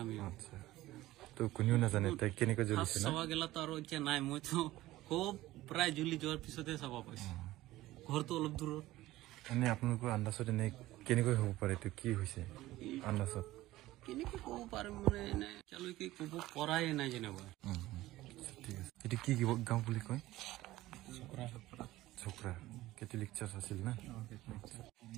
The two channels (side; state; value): left; quieter; 16.7 dB